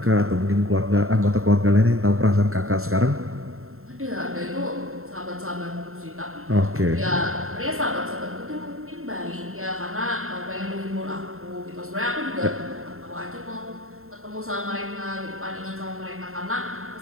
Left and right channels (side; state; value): left; late; 0.62 ms